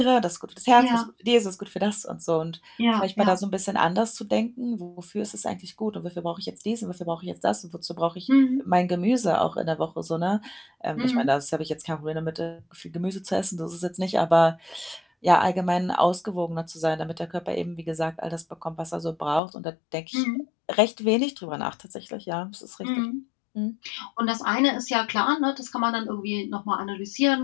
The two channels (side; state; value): right; drops out; at 19.4 s